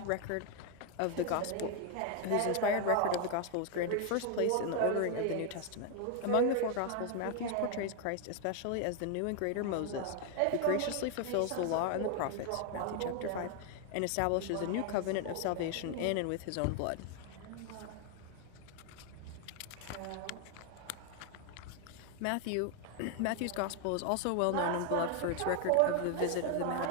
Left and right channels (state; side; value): different; both; correlation 0.00